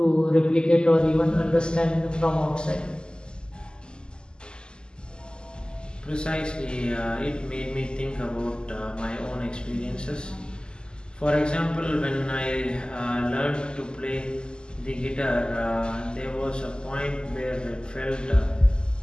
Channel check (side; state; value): right; late; 0.047 ms